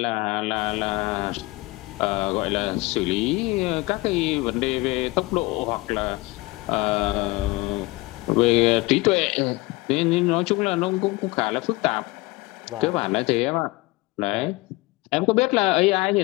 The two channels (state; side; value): quieter; right; 22.5 dB